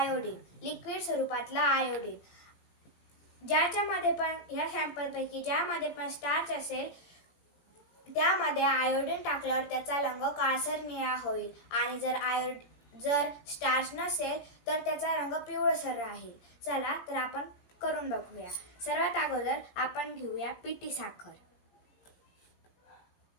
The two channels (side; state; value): right; late; 17 ms